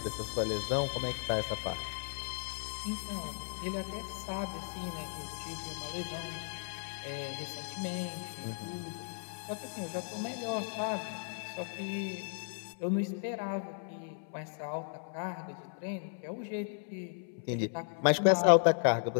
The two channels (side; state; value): right; silent; 54 dB below the other